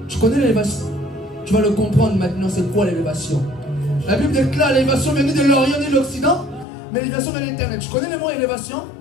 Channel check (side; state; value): right; drops out; at 6.7 s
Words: Tu connais l'élévation? Tu vas le comprendre maintenant, c'est quoi l'élévation? La Bible déclare l'élévation vient ni de l'Orient ni de l'Occident, mais l'élévation vient de l'Éternel. Tu connais le mot élévation?